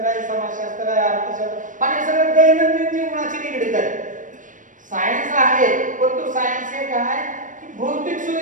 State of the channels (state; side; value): late; left; 0.38 ms